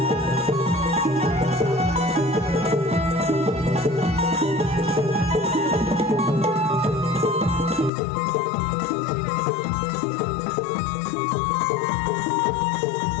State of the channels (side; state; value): right; drops out; at 7.9 s